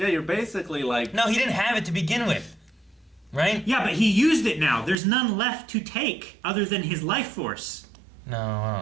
you're basically like. No, he didn't have it to begin with. Right? Yeah, but he used it now. There's none left to take other than his life force. No, I don't know.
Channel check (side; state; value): left; drops out; at 5.0 s